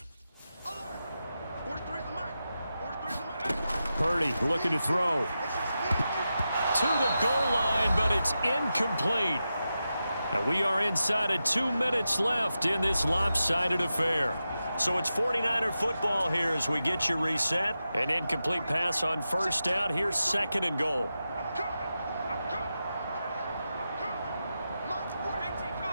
Purdy looking to throw. To the goal line, but it's incomplete. And we are inside of 2 minutes left in this lopsided affair. So it's 49er football here as we get you reset. An incomplete pass on first down. Here's 2nd and goal.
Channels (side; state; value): both; inverted; correlation -0.90